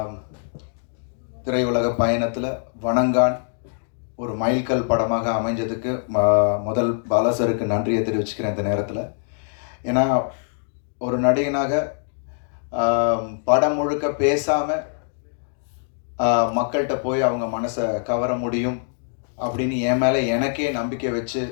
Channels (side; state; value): right; silent; digital silence